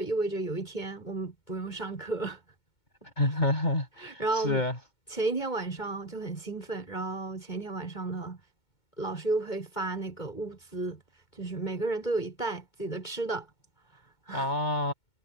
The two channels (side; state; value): right; late; 2.2 ms